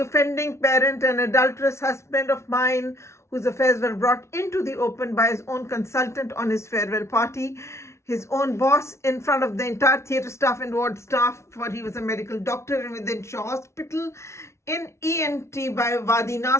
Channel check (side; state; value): right; late; 0.13 ms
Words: parent and adulterous husband of mine, whose affairs were brought into the open by his own consultant on his farewell party, his own boss, in front of the entire theatre staff and ward staff, for he was a medical doctor within Shaw Hospital, in ENT by Wadi